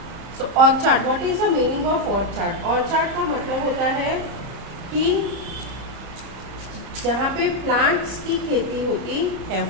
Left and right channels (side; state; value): left; late; 30 ms